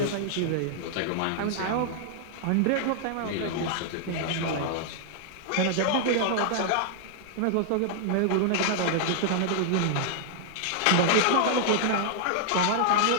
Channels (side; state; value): both; different; correlation -0.01